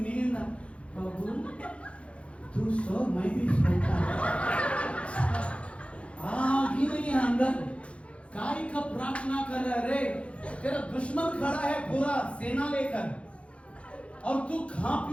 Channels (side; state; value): right; late; 0.061 ms